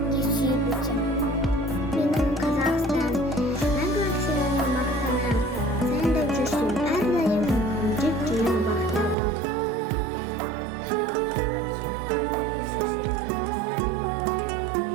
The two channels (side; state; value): left; drops out; at 9.2 s